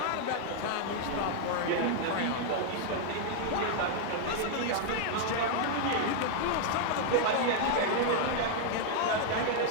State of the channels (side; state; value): both; different; correlation 0.00